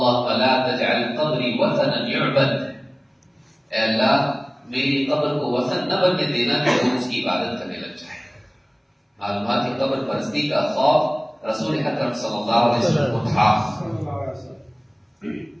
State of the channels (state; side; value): identical; both; correlation 1.00